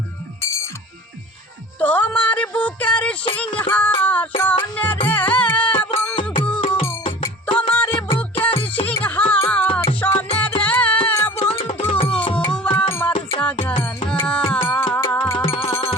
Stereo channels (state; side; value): normal; both; correlation 0.41